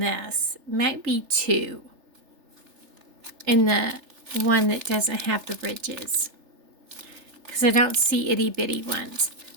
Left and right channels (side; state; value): left; late; 3.4 ms